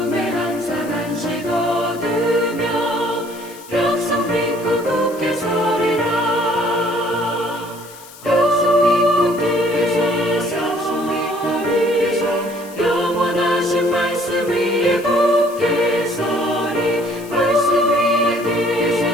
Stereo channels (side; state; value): left; noise; hiss, 19 dB below the sound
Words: 항상 안식 얻으며 약속 믿고 굳게 서리라. 약속 믿고 굳게 서서 영원하신 말씀 위에 굳게 서리 말씀 위에 굳게